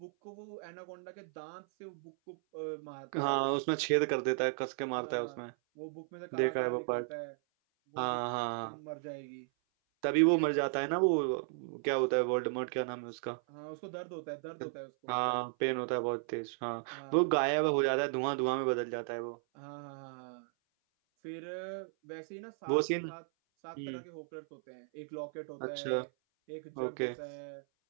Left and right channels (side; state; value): left; silent; 54 dB below the other